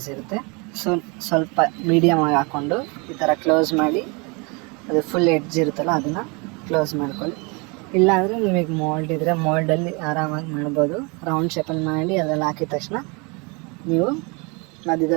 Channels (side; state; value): left; quieter; 30.3 dB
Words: ಇರುತ್ತೆ. ಸೊ ಸ್ವಲ್ಪ ಮೀಡಿಯಮ್ ಆಗಿ ಹಾಕ್ಕೊಂಡು ಈ ಥರ ಕ್ಲೋಸ್ ಮಾಡಿ ಅದು ಫುಲ್ ಎಡ್ಜ್ ಇರುತ್ತಲ್ಲ ಅದನ್ನು ಕ್ಲೋಸ್ ಮಾಡ್ಕೊಳ್ಳಿ. ಇಲ್ಲಾಂದರೆ ನಿಮಗೆ ಮೋಲ್ಡ್ ಇದ್ದರೆ ಮೋಲ್ಡಲ್ಲಿ ಆರಾಮಾಗಿ ಮಾಡ್ಬೋದು. ರೌಂಡ್ ಶೇಪಲ್ಲಿ ಮಾಡಿ ಅದರಲ್ಲಿ ಹಾಕಿದ ತಕ್ಷಣ ನೀವು